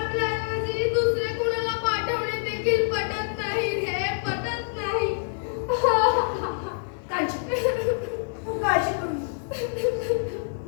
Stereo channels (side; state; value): right; silent; 61 dB below the other